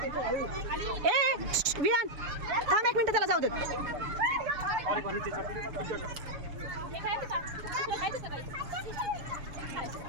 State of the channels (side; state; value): left; late; 7.0 ms